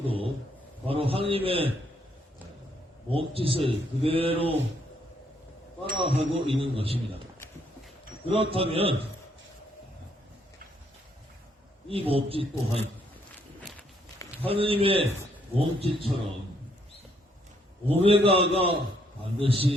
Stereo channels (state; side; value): normal; both; correlation 0.71